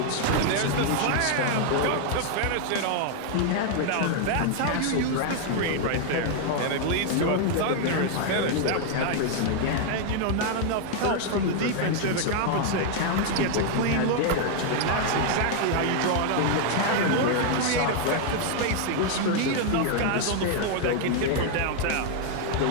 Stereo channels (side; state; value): both; different; correlation 0.00